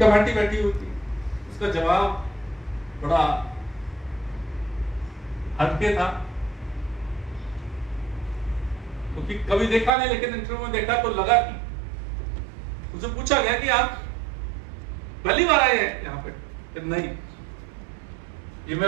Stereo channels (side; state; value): left; drops out; at 9.9 s